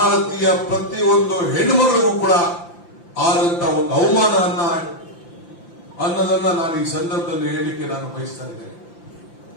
ಪ್ರತಿಯೊಂದು ಹೆಣ್ಣುಮಗಳಿಗೂ ಕೂಡ ಆದಂತ ಒಂದು ಅವಮಾನ ಅನ್ನೋದನ್ನ ನಾನು ಈ ಸಂದರ್ಭದಲ್ಲಿ ಹೇಳಲಿಕ್ಕೆ ನಾನು ಬಯಸ್ತಾ ಇದ್ದೇನೆ.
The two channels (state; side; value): late; right; 5.8 ms